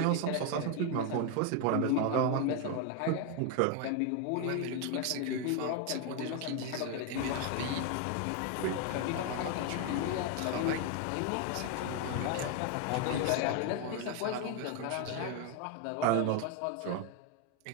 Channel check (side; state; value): both; different; correlation 0.01